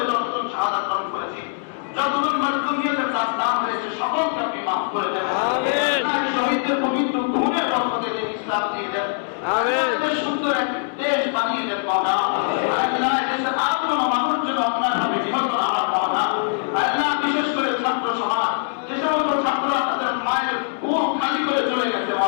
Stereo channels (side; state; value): right; silent; 64 dB below the other